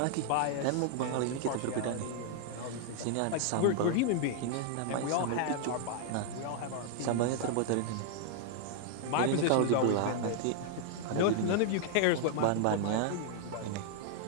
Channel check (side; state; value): both; different; correlation -0.01